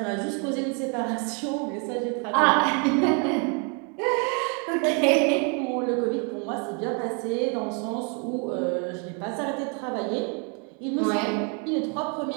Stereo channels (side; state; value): left; quieter; 36.1 dB